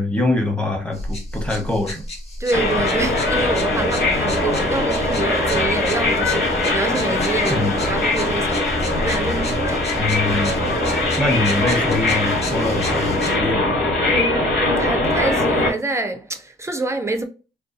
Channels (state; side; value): normal; both; correlation 0.49